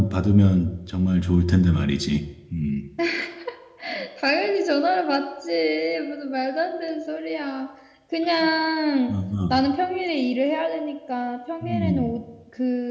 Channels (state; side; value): identical; both; correlation 1.00